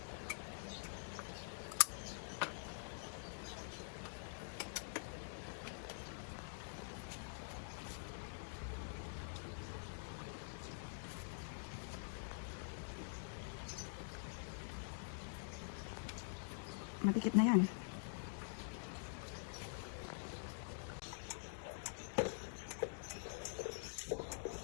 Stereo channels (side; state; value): right; silent; digital silence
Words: Madikit na yan.